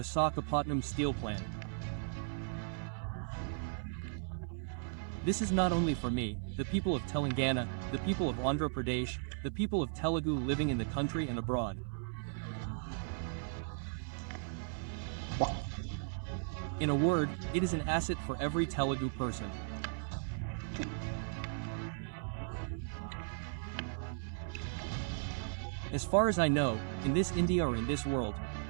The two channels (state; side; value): silent; left; 53 dB below the other